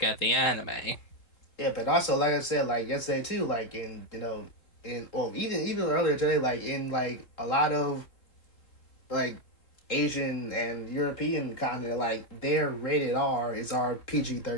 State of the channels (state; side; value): late; right; 3.7 ms